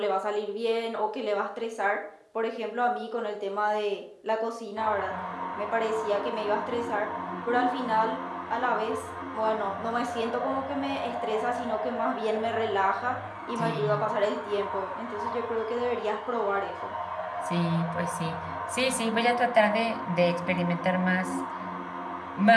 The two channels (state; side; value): identical; both; correlation 1.00